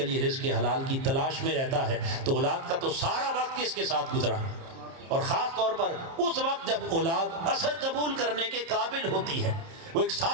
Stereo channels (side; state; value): left; late; 30 ms